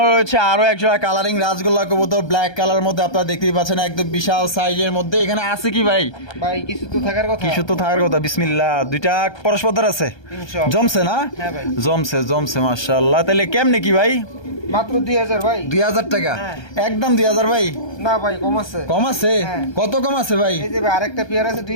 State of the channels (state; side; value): late; right; 1.2 ms